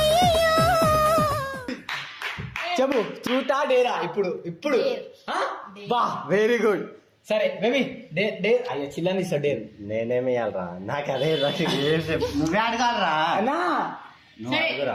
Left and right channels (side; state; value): both; identical; correlation 1.00